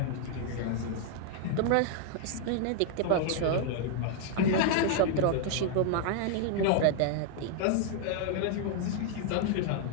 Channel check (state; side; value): different; both; correlation 0.00